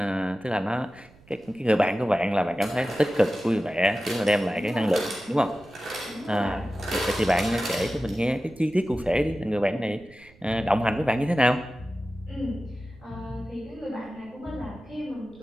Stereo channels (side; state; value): right; noise; rumble, 26 dB below the sound